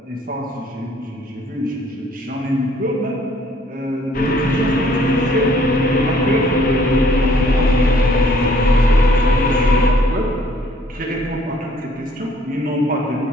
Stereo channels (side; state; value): both; normal; correlation 0.61